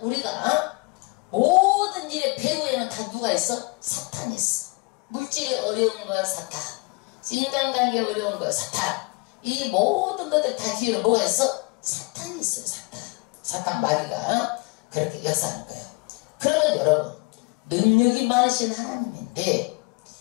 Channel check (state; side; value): quieter; right; 29.1 dB